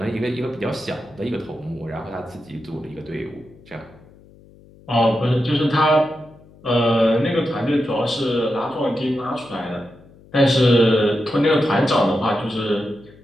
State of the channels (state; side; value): noise; left; hum, 25 dB below the sound